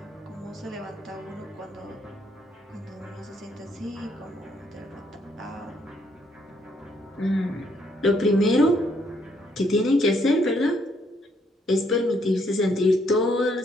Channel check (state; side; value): normal; both; correlation 0.71